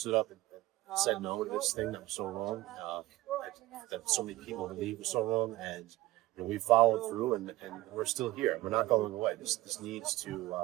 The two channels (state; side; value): quieter; left; 17.5 dB